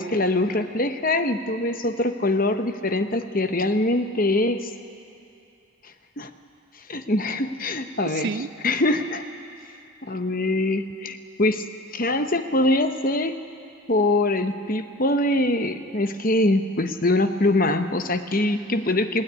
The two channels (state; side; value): normal; both; correlation 0.39